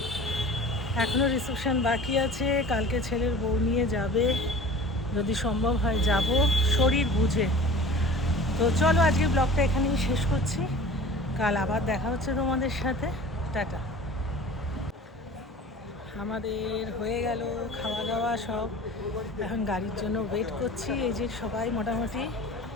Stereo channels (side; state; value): both; normal; correlation 0.42